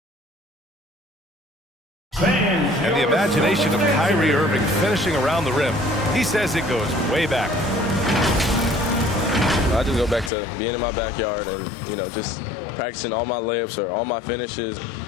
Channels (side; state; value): right; drops out; at 10.3 s